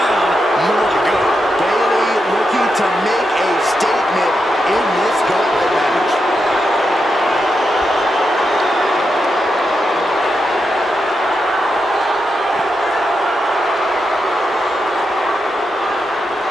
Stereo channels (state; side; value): normal; both; correlation 0.85